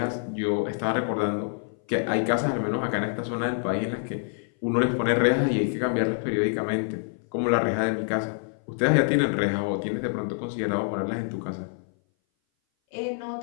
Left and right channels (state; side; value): silent; right; 58 dB below the other